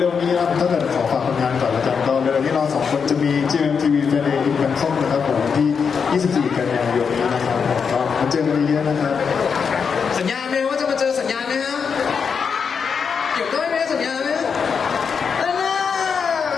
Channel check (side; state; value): right; quieter; 6.1 dB